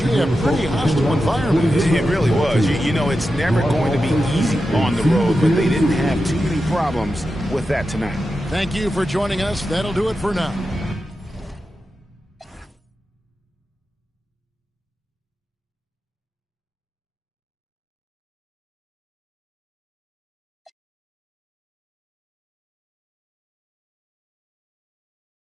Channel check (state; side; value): normal; both; correlation 0.90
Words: pretty hostile environment. It really was. You know, it's never going to be easy on the road, but they didn't have too many problems with that tonight. Thank you for joining us. That'll do it for now.